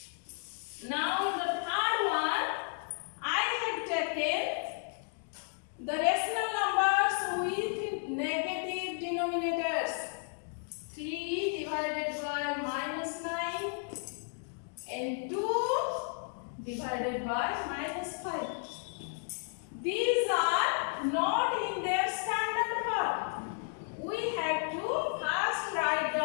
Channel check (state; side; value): silent; right; 56 dB below the other